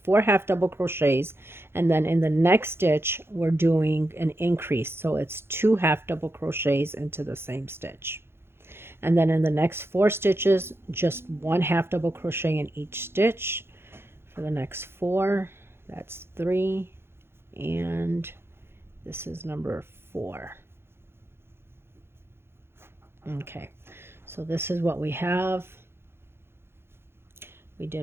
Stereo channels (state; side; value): late; left; 0.11 ms